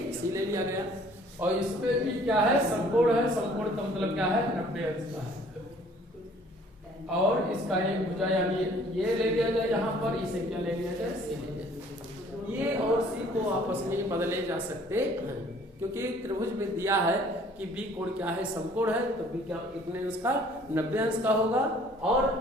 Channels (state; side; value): normal; both; correlation 0.56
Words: सी ले लिया गया और इसमें भी क्या है, समकोण है। समकोण का मतलब क्या है, 90 अंश का है। और इसका एक भुजा यानी ये ले लिया जाए यहाँ पर, इसे क्या ले लिया जाए, सी ले लिया जाए। ये और सी को आपस में बदले जा सकते हैं, क्योंकि त्रिभुज में दिया है कि बी कोण क्या है, समकोण है। तो बी क्या कितने अंश का, 90 अंश का होगा। और